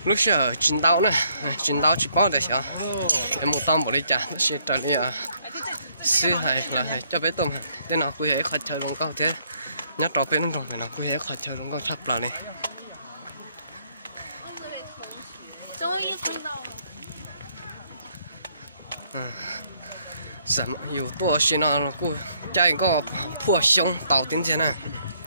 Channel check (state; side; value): inverted; both; correlation -0.69